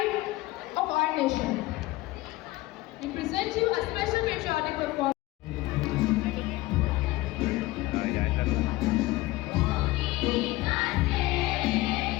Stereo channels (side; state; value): right; quieter; 19.0 dB